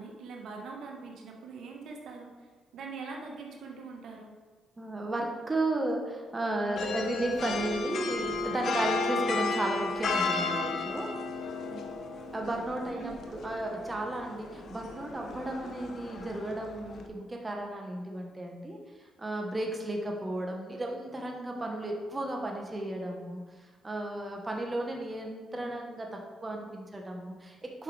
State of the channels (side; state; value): both; normal; correlation 0.78